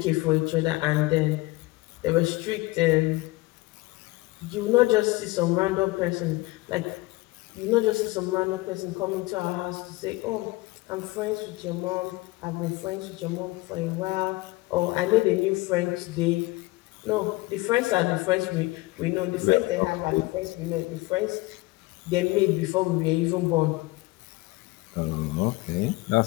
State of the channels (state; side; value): quieter; right; 21.5 dB